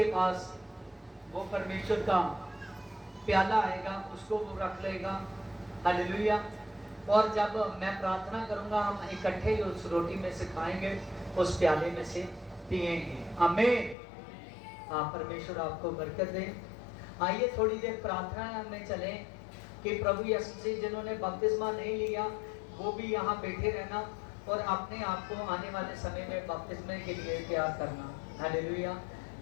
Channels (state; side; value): drops out; right; at 14.0 s